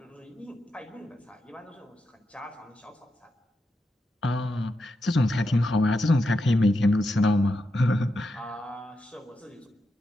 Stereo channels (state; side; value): normal; both; correlation 0.86